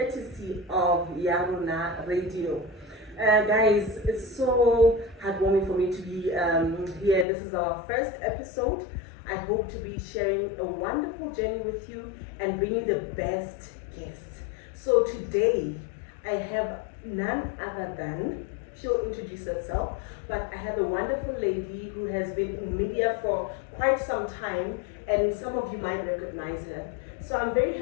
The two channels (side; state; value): right; drops out; at 7.2 s